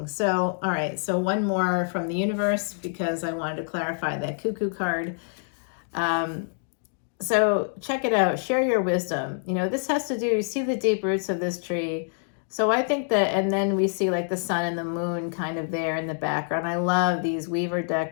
So, all right. So one more from the universe, because I wanted to clarify that cuckoo card. So check it out. Share your wisdom. You know, this has to do, you see the deep roots of this tree. So I think that, and then we see like the sun and the moon kind of there in the background. I love these Weaver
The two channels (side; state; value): right; silent; digital silence